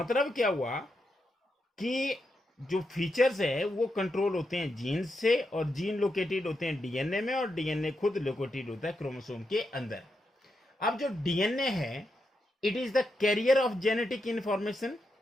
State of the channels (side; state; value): both; normal; correlation 0.84